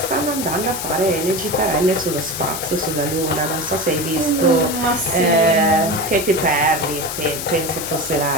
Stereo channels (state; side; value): noise; left; hiss, 6 dB below the sound